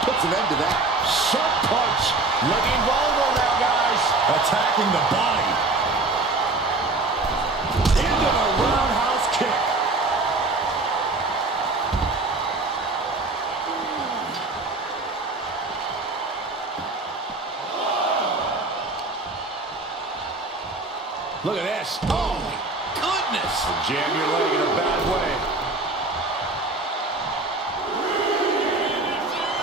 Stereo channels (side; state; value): left; quieter; 3.3 dB